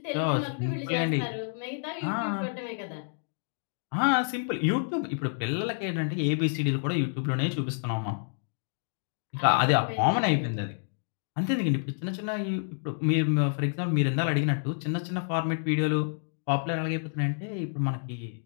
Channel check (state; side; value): silent; right; digital silence